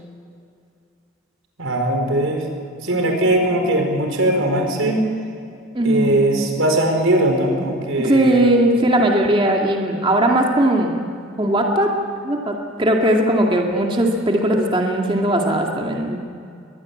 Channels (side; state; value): both; normal; correlation 0.37